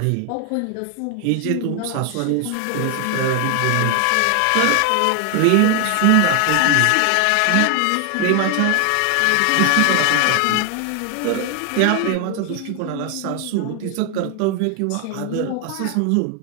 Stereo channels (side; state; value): both; different; correlation 0.01